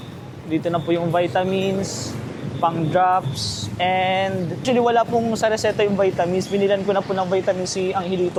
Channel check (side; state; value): both; identical; correlation 1.00